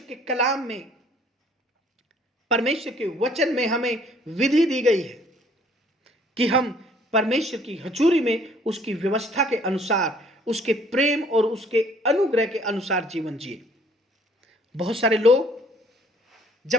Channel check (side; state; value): both; normal; correlation 0.59